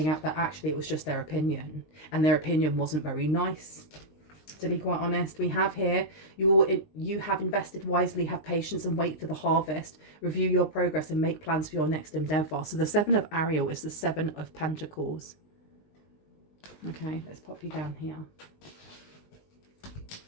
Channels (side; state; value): right; late; 20 ms